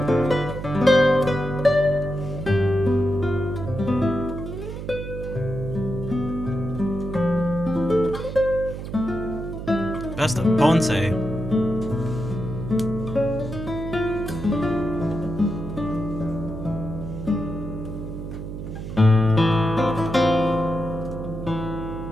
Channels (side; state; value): right; noise; hum, 8 dB below the sound